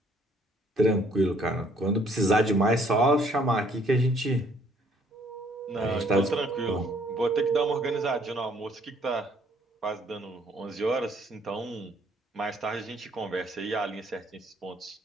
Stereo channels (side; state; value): both; normal; correlation 0.63